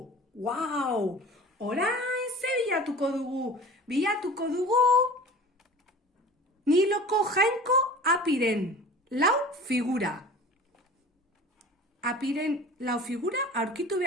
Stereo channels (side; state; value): both; normal; correlation 0.40